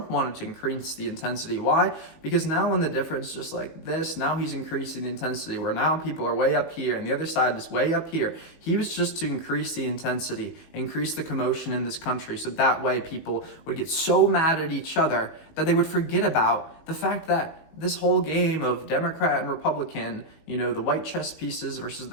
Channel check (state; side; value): late; right; 18 ms